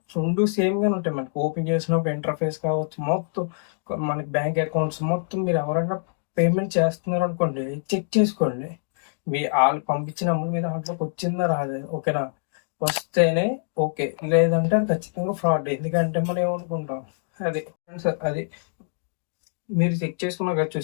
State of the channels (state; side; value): silent; right; digital silence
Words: 2 సేమ్గానే ఉంటాయి. మనకి ఓపెన్ చేసినప్పుడు ఇంటర్ఫేస్ కావచ్చు, మొత్తం మనకి బ్యాంక్ అకౌంట్స్ మొత్తం మీరు ఎవరైనా పేమెంట్ చేస్తున్నారు అనుకోండి, చెక్ చేసుకోండి. మీ వాళ్ళు పంపించిన అమౌంట్ మీద దాంట్లోకి వచ్చిందా రాదే. ఓకేనా, వస్తేనే ఓకే, లేదంటే అది ఖచ్చితంగా ఫ్రాడ్. ఎందుకంటే మనం ఏమనుకుంటాం, అది ఫ్రెండ్స్, అది మీరు చెక్ చేసుకున్నారు కదా,